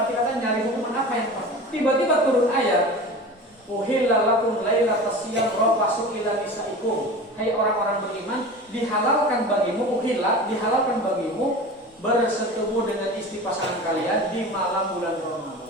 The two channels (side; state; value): both; normal; correlation 0.34